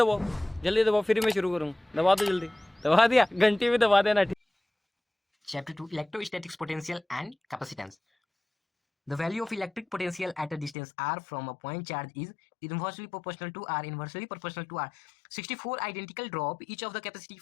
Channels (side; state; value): right; drops out; at 10.8 s